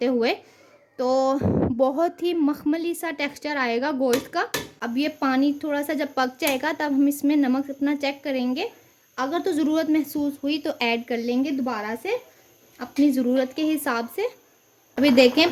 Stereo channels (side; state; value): both; identical; correlation 1.00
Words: हुए, तो बहुत ही मखमली सा टेक्सचर आएगा गोश्त का। अब ये पानी थोड़ा सा जब पक जाएगा तब हम इसमें नमक अपना चेक करेंगे। अगर तो ज़रूरत महसूस हुई तो ऐड कर लेंगे दोबारा से अपनी ज़रूरत के हिसाब से। अभी